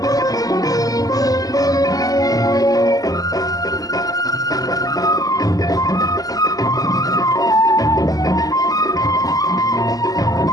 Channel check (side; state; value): right; late; 0.17 ms